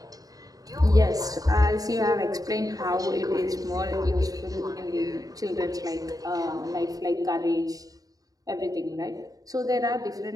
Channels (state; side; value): late; left; 0.18 ms